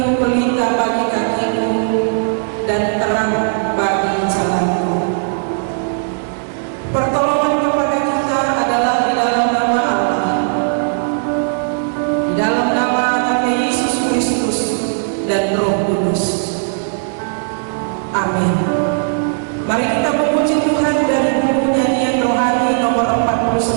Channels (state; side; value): silent; left; 58 dB below the other